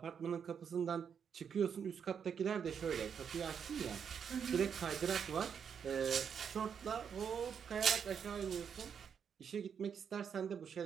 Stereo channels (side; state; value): left; quieter; 7.3 dB